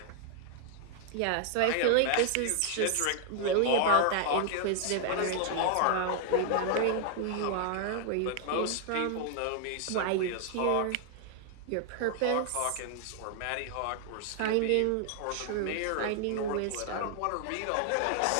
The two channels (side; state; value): both; different; correlation 0.00